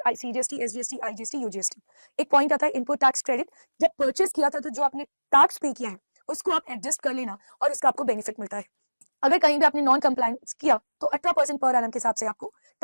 सीजीएसटी, एसजीएसटी, आईजीएसटी, यूजीएसटी। एक पॉइंट आता है इनपुट टैक्स क्रेडिट। जब परचेज किया था तो जो आपने टैक्स पे किया है उसको आप एडजस्ट कर लेना और उसका आपको बेनिफिट मिलता है। अगर कहीं भी आपने नॉन कंप्लायंस किया तो 18% पर एनम के हिसाब से आपको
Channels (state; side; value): inverted; both; correlation -1.00